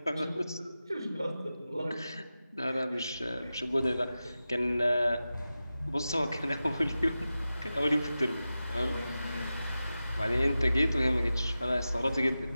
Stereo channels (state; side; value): inverted; both; correlation -0.94